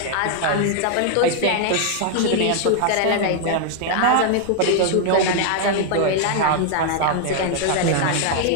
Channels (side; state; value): both; different; correlation 0.00